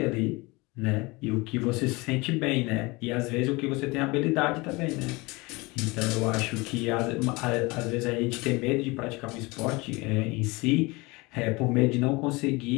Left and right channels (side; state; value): right; quieter; 24.5 dB